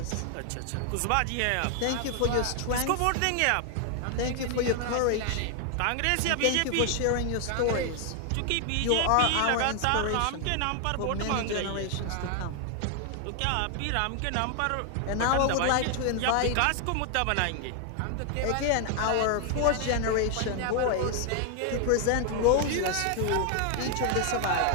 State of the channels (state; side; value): different; both; correlation 0.00